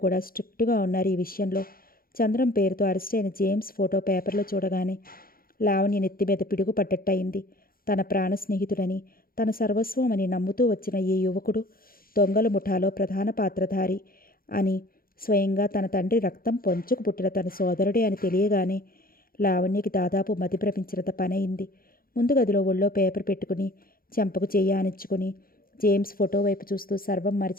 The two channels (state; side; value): late; right; 0.42 ms